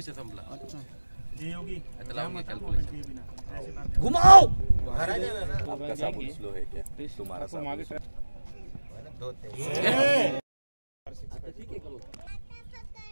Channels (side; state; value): both; inverted; correlation -1.00